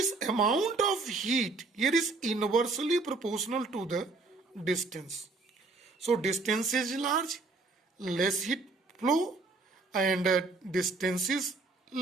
amount of heat here is inversely proportional to the distance. So distance is large, less heat flow, and distance is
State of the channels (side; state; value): left; quieter; 3.6 dB